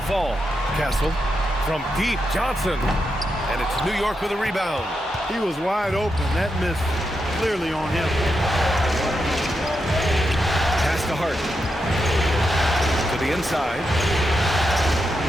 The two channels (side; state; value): both; normal; correlation 0.85